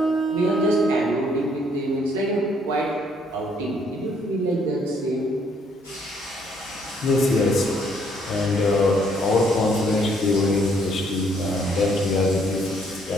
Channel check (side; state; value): both; normal; correlation 0.67